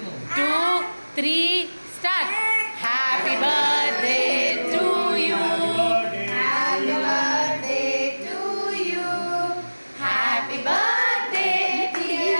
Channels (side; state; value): both; inverted; correlation -1.00